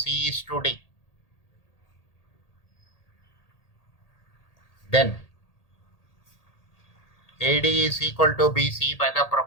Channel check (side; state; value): right; late; 1.8 ms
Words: is to D, then AD is equal to BC by